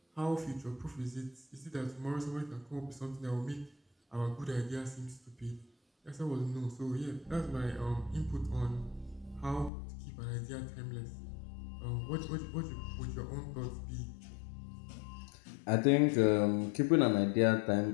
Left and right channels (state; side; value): drops out; right; at 9.7 s